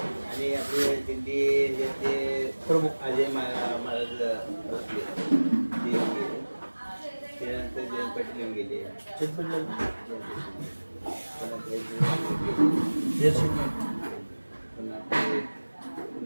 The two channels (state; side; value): inverted; both; correlation -1.00